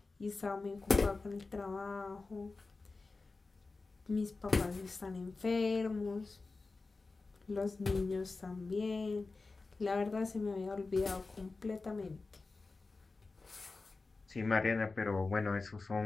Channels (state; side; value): quieter; right; 3.8 dB